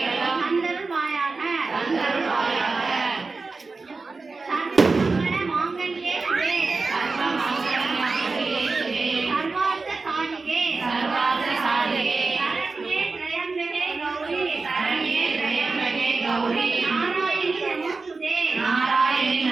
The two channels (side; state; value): left; quieter; 4.0 dB